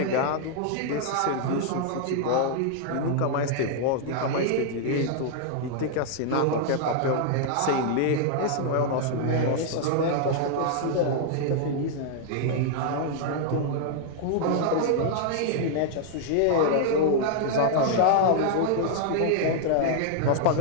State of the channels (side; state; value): both; different; correlation -0.01